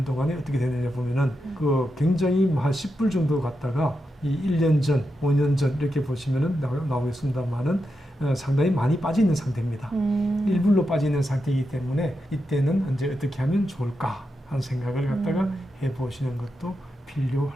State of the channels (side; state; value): both; normal; correlation 0.87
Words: 동안에 어떻게 됐느냐 보면은 그 굉장히 한 10불 정도 갔다가 이 1년 전, 5년 전 이렇게 보시면은 나오겠습니다만은 상당히 많이 빠져 있는 상태입니다. 1불로 빠져 있는 상태이기 때문에 이때는 이제 어떻게 하면 좋을까 하는 생각을 갖다가 해보시는 것도